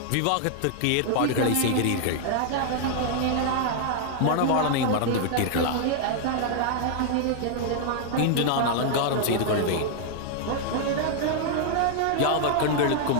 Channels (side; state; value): both; different; correlation 0.00